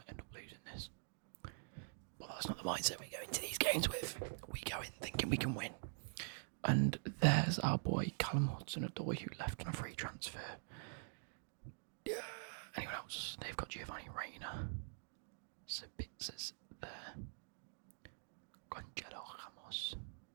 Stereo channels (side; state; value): left; silent; digital silence